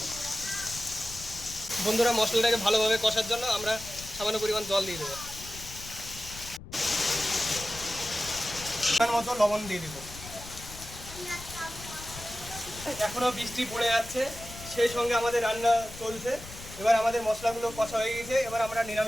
বন্ধুরা মশলাটাকে ভালোভাবে কষার জন্য আমরা সামান্য পরিমাণ জল দিয়ে দেবো। পরিমাণ মতো লবণ দিয়ে দেবো। এখনো বৃষ্টি পড়ে যাচ্ছে, সেই সঙ্গে আমাদের রান্না চলছে। এবার আমাদের মশলাগুলো কষা হয়ে গেছে, এবার আমরা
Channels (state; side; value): noise; left; rumble, 14 dB below the sound